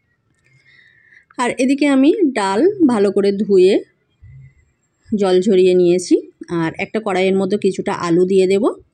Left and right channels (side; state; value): both; identical; correlation 1.00